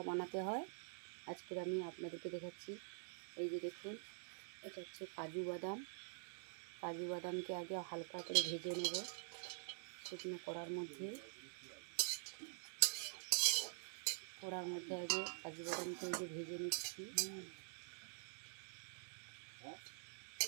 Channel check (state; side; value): silent; left; digital silence